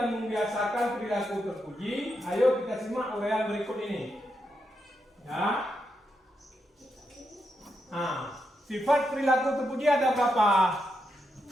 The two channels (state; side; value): normal; both; correlation 0.83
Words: membiasakan perilaku terpuji, ayo kita simak uraian berikut ini. Ya. Sifat perilaku terpuji ada berapa?